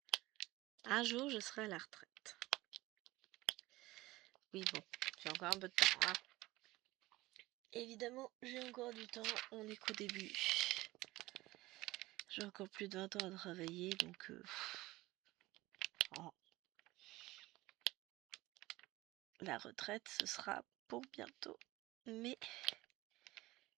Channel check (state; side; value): quieter; left; 18.9 dB